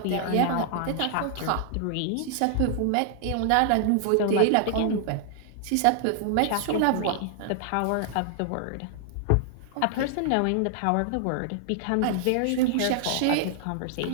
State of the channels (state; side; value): different; both; correlation 0.00